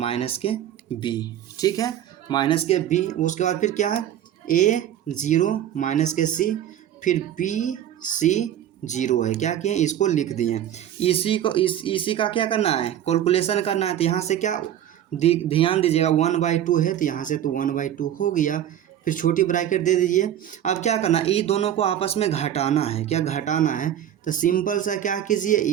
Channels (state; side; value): quieter; left; 10.9 dB